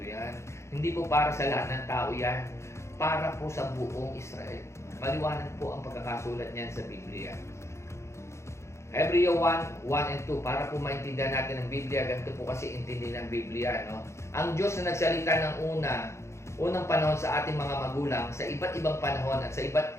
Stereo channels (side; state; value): right; late; 0.13 ms